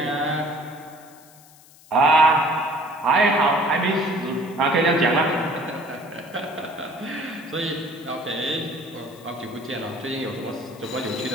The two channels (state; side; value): noise; left; hiss, 24 dB below the sound